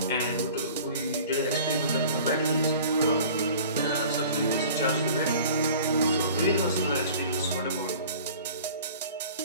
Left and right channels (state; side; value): inverted; both; correlation -0.44